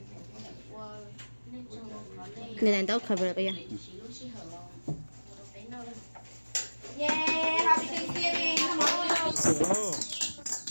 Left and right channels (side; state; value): both; inverted; correlation -1.00